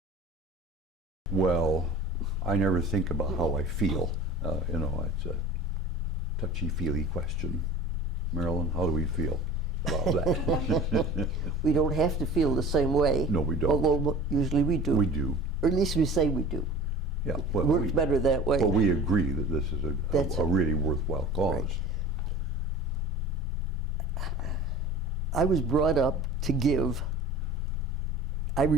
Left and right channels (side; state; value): both; normal; correlation 0.41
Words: Well, I never think about how I feel. You know, it's a touchy-feely question. Marilyn, how do we feel about that? We don't have to feel the same way. No, we don't. Although usually we do. We do. Or at least we say we do. Yeah. It Well, works better that way. But we agree that this is That's a it. really worthwhile cause. Right. I was brought up to give. I